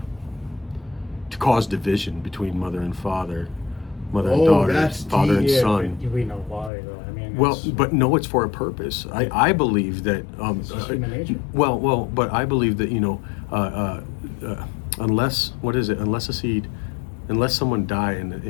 to cause division between mother and father, mother and daughter, father and son. We know why, though. I mean, But no, it's for a purpose. I believe that. It's human nature. But I believe that, you know, unless someone die and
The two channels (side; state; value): right; drops out; at 6.7 s